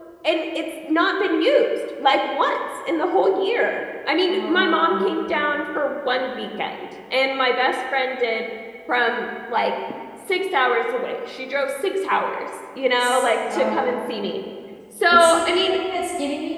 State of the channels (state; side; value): identical; both; correlation 1.00